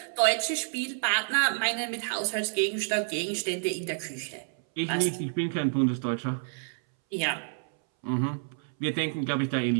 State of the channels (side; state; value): left; silent; 59 dB below the other